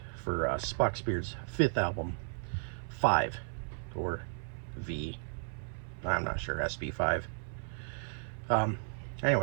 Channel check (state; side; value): silent; left; 55 dB below the other